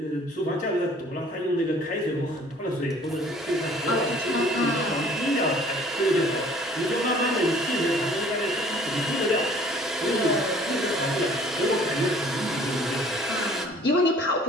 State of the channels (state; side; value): normal; both; correlation 0.54